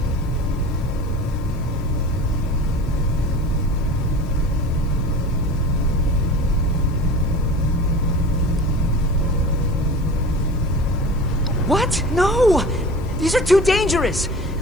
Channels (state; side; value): noise; right; hiss, 29 dB below the sound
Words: What? No! These are too dangerous.